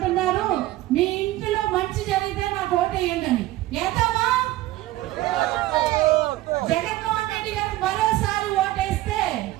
మీ ఇంటిలో మంచి జరిగితే నాకు ఓటేయండి అని. ఏతామా? జగన్మోహన్ రెడ్డి గారు మరోసారి ఓటేస్తే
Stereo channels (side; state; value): left; quieter; 16.4 dB